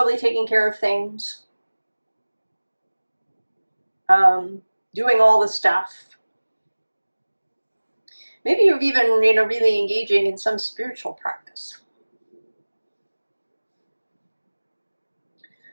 taking care of things, doing all the stuff. Maybe you're even, really engaging in some spiritual practice.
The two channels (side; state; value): both; inverted; correlation -1.00